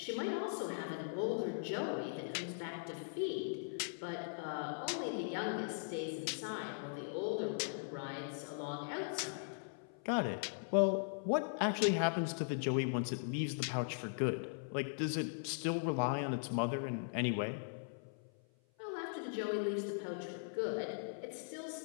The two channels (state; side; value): silent; right; 51 dB below the other